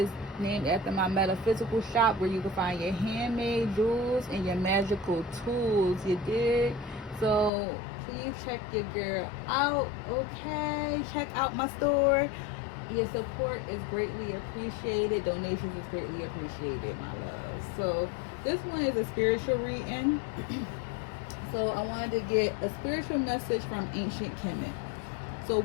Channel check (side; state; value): right; drops out; at 7.5 s